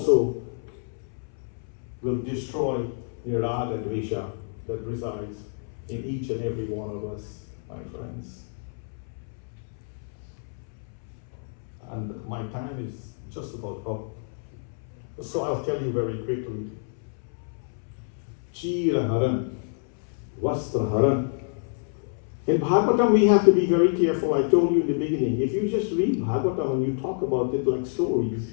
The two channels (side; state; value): right; silent; 60 dB below the other